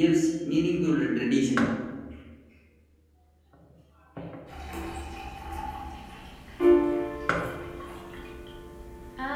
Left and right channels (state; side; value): identical; both; correlation 1.00